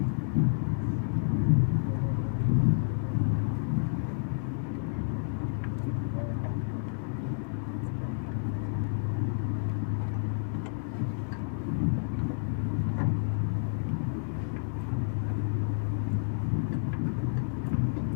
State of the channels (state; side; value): silent; right; digital silence